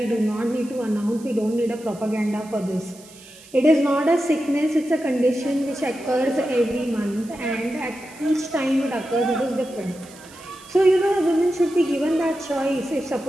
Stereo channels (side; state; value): right; noise; hiss, 22 dB below the sound